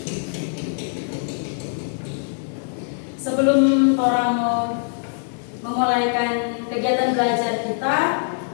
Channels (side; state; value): right; silent; digital silence